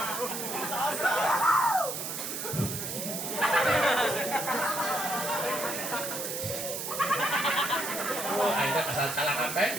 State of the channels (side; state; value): right; noise; hiss, 4 dB below the sound